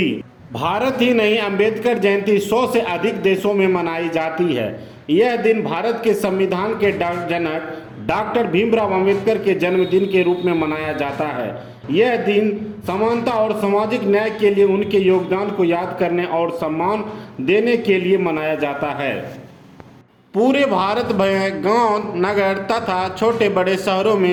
भारत ही नहीं, अंबेडकर जयंती 100 से अधिक देशों में मनाई जाती है। यह दिन भारत के संविधान के जनक डॉक्टर भीमराव अंबेडकर के जन्मदिन के रूप में मनाया जाता है। यह दिन समानता और सामाजिक न्याय के लिए उनके योगदान को याद करने और सम्मान देने के लिए मनाया जाता है। पूरे भारत में गांव, नगर तथा छोटे बड़े शहरों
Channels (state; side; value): identical; both; correlation 1.00